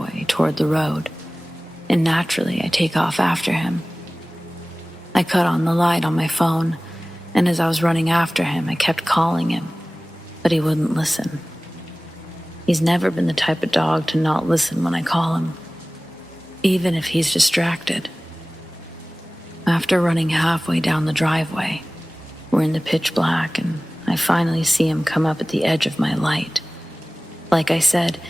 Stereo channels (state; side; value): normal; both; correlation 0.98